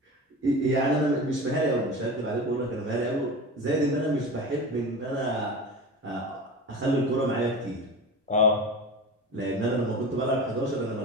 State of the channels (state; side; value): normal; both; correlation 0.31